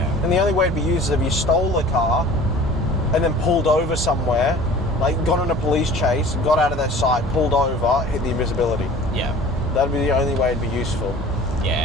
And the only way it'd be used is if you stole a car and then pulled over somewhere, like got on a police chase, got out of their sight, pulled over, hit the invisibility. Yeah. That'd be the only way it'd be useful.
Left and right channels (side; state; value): both; normal; correlation 0.44